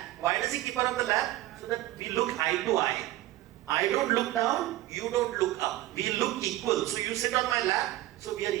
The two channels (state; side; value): quieter; left; 15.8 dB